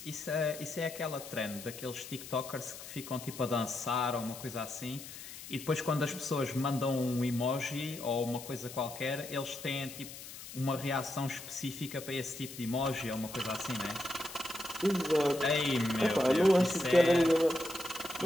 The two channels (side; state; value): left; noise; hiss, 13 dB below the sound